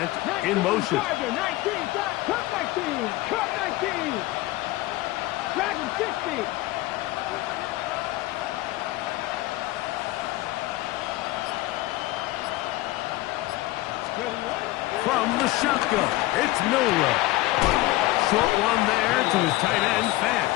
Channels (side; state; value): right; quieter; 18.0 dB